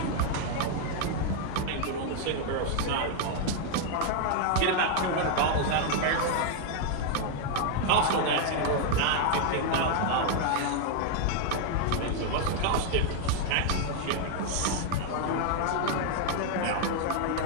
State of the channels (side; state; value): both; different; correlation 0.00